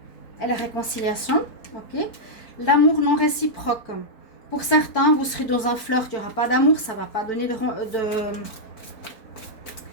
et la réconciliation. Ok. L'amour non réciproque. Pour certains, vous serez dans un flirt, il n'y aura pas d'amour, ça ne va pas donner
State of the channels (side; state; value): right; late; 4.5 ms